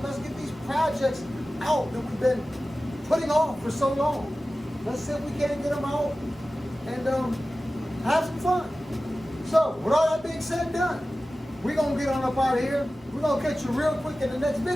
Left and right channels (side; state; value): both; normal; correlation 0.95